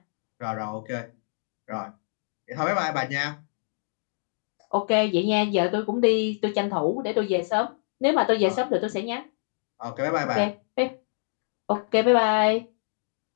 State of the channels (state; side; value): silent; right; digital silence